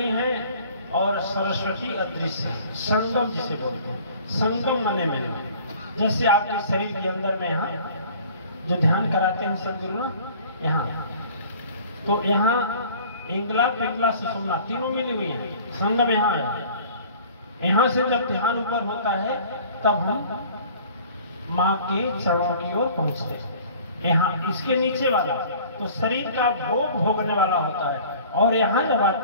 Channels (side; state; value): both; inverted; correlation -0.48